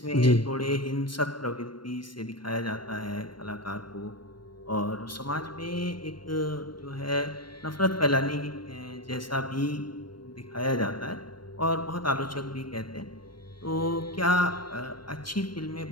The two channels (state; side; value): late; right; 0.72 ms